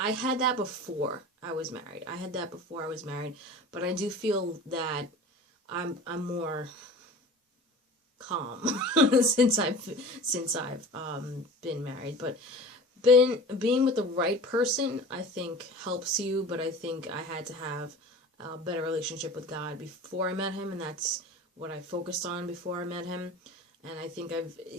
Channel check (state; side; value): normal; both; correlation 0.38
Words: had that before I was married. But I do feel that I'm more calm since I've been married. But being with the right person, I think, helps you, but I think I had to have a better relationship with God before I met him, and that's what I focused on before I met him. And I think